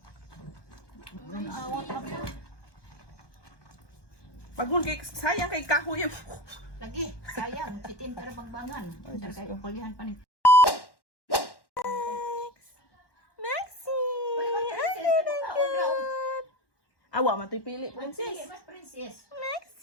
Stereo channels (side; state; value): right; late; 1.1 ms